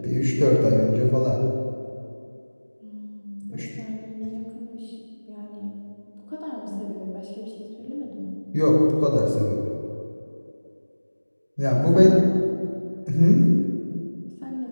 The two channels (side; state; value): both; inverted; correlation -1.00